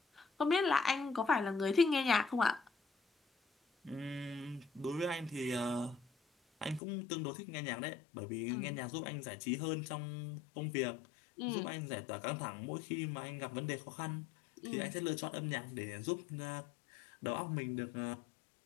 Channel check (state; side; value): drops out; right; at 6.8 s